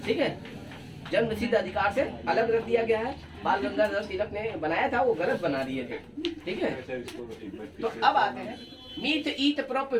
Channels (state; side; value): identical; both; correlation 1.00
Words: ठीक है, जन्मसिद्ध अधिकार से अलग रख दिया गया है। बाल गंगाधर तिलक ने बनाया था, वो गलत बना दिए थे, ठीक है। तो अब आते हैं meth, eth, prop,